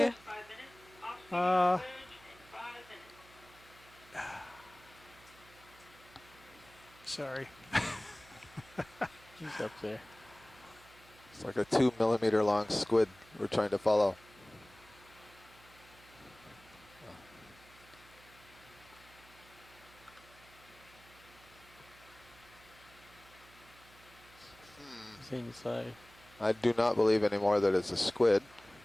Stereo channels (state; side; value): noise; right; hum, 24 dB below the sound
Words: Sorry. He's up there. It's like a 2 millimeter long squid we're trying to follow. Inside. I do not believe anymore that it's a squid.